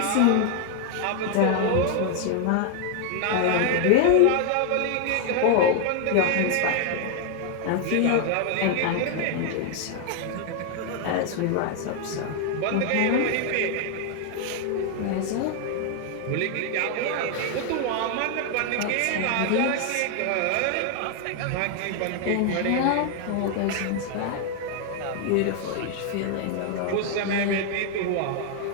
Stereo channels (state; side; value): different; both; correlation 0.00